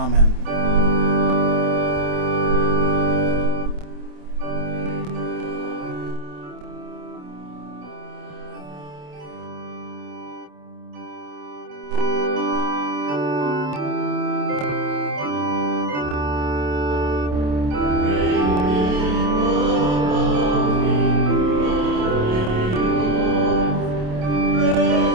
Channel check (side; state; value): left; late; 27 ms